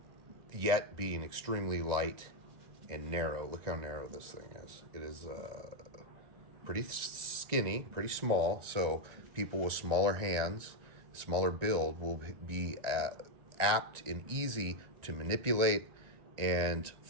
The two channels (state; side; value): late; left; 1.9 ms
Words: Yet being extremely light and narrow. Look how narrow this thing is. It is pretty skinny, pretty small. So people with smaller hands, smaller build will be apt and easy to manipulate and